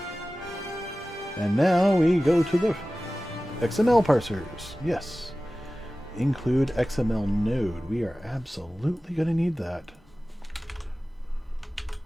And now we go to the XML parsers. Yes. Include XML node. We are absolutely going to need that.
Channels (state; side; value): normal; both; correlation 0.96